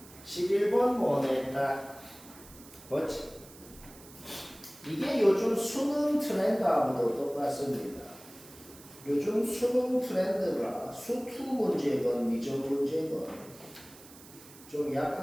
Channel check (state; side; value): noise; right; hiss, 20 dB below the sound